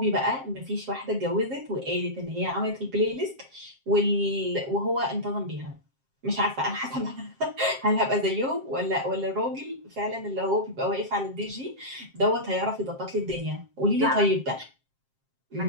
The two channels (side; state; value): left; late; 7.5 ms